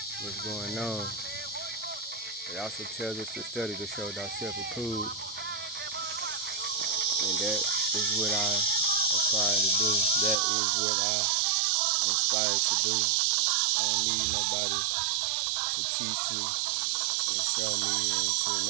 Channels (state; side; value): drops out; left; at 10.4 s